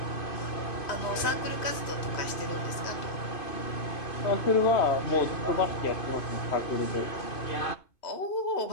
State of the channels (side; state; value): right; late; 2.5 ms